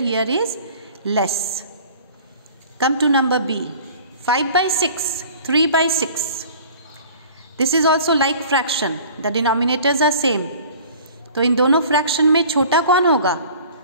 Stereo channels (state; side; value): inverted; both; correlation -0.47